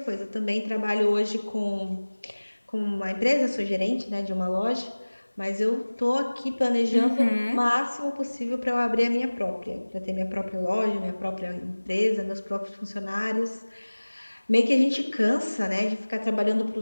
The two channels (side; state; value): both; inverted; correlation -1.00